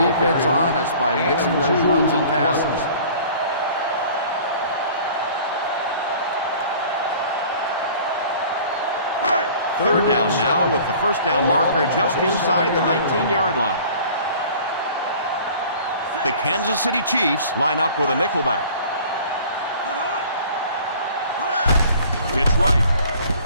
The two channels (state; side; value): inverted; both; correlation -0.48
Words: defense honest by mixing those runs and passes. Third down now with the first down marker just inside the 19-yard line. The Kansas City Chiefs line up with a nickelback. It's right.